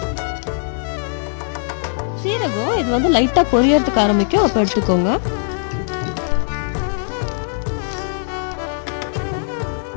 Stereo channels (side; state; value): right; silent; 60 dB below the other